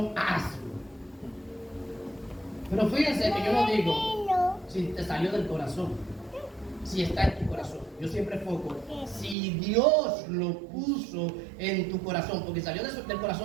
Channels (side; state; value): left; drops out; at 9.3 s